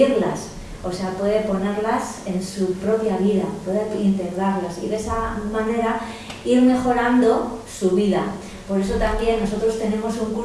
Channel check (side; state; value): both; identical; correlation 1.00